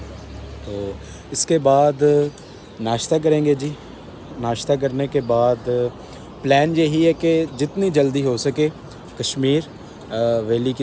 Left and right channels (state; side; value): identical; both; correlation 1.00